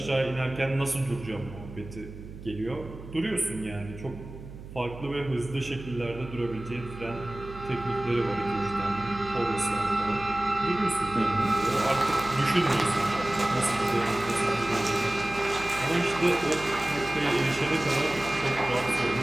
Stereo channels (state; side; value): noise; right; hum, 14 dB below the sound